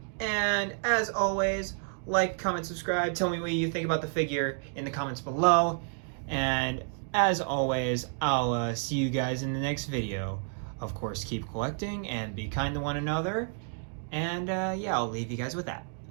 And as always, like, comment, subscribe. Tell me what you think about the figure in the comments below. And as always, I'll see you guys in the next video. Of course, keep collecting and be kind to one another. And yeah, I'll leave you guys with that.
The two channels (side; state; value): left; silent; 58 dB below the other